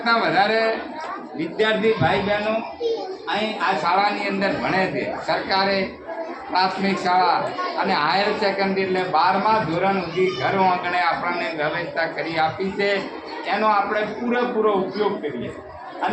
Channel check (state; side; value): identical; both; correlation 1.00